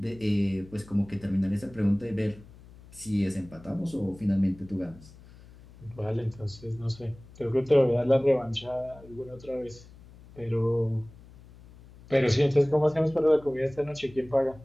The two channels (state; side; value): noise; left; hum, 21 dB below the sound